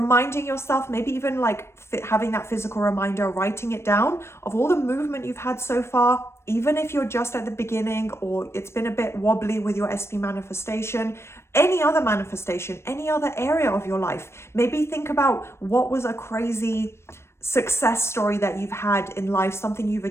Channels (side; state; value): right; late; 0.13 ms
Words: yourself, maybe even like having that physical reminder, writing it down of all the movement you've had so far, even if you're just at the beginning or it's been a bit wobbly with your SP manifestation, any other manifestation, any other area of your life. Maybe think about what was a crazy success story that you've had in life, something you've